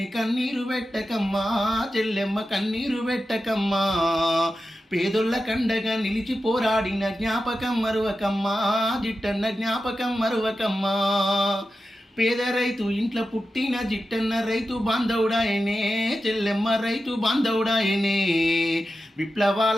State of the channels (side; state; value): both; normal; correlation 0.91